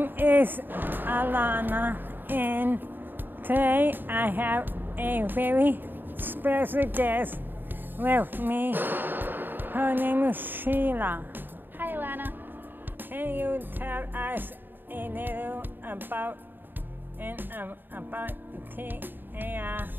is Alana, and today I have a very special guest with me. Her name is Sheila. Hi, Alana. Can you tell us a little about TAR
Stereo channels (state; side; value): late; left; 0.093 ms